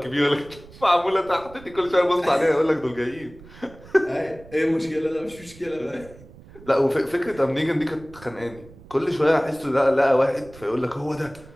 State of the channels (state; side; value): noise; right; rumble, 20 dB below the sound